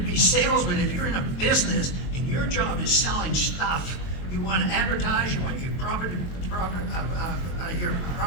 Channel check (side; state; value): right; late; 22 ms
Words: be salesmen. If you're in a business and your job is selling stuff, you want to advertise, you want your product